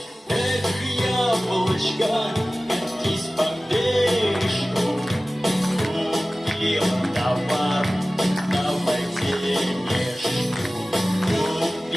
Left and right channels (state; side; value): normal; both; correlation 0.97